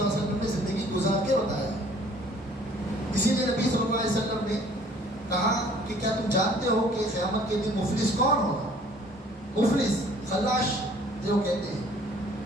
اللہ علیہ وسلم نے زندگی گزار کے بتایا ہے. کہا کہ کیا تم جانتے ہو کہ قیامت کے دن مفلس کون ہوگا؟ مفلس خلاش جو کہتے ہیں،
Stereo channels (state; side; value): normal; both; correlation 0.55